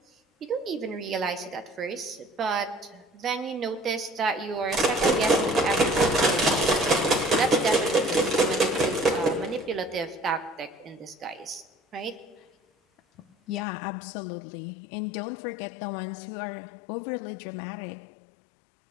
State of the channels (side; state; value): right; drops out; at 13.7 s